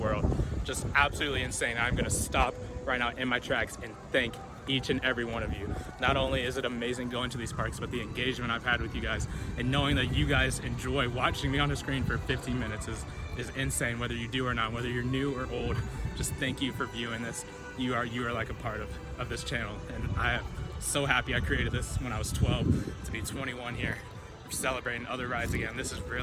just absolutely insane. I'm gonna stop right now in my tracks and thank each and every one of you. Not only is it amazing going to these parks, but the engagement I've had with you guys and knowing that you guys enjoy watching me on the screen for 15 minutes is insane, whether you do or not, whether you're new or old. Just thank you for viewing this. You are like a part of this channel, and I am so happy I created this when I was 12 to be 21 here. We're celebrating other rides again. This is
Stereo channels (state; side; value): identical; both; correlation 1.00